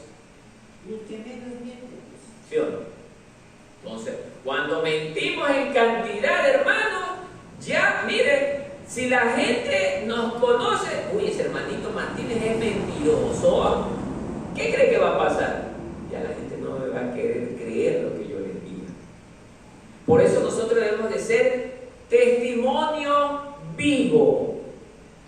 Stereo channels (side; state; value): both; identical; correlation 1.00